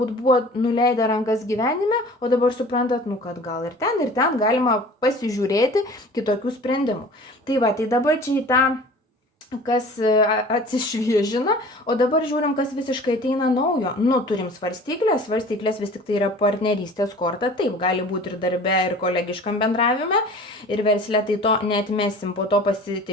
buvo nuleidę rankas gyvenime, o dabar suprantat, nu, kad gal ir ten galima pasižiūrėti kitokių sprendimų. Tai va, tai dabar čia į tą kas atsišviežina, o dabar žiūrim, kas visiškai ateina naujo. Nu, turim svarstyklės vis tik tai yra partnerystės korta, taip, gali būti ir darbe, ir kolegiškam bendravime, ir versle, tai to neatmesim, po to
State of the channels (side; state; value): both; normal; correlation 0.43